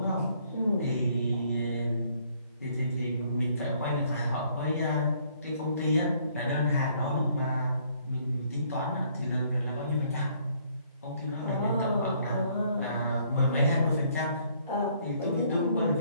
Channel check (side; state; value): both; inverted; correlation -0.65